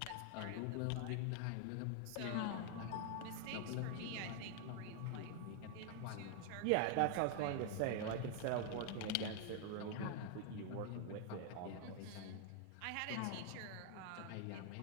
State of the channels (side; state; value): both; different; correlation 0.00